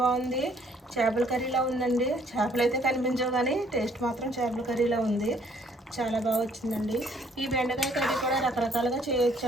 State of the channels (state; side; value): normal; both; correlation 0.63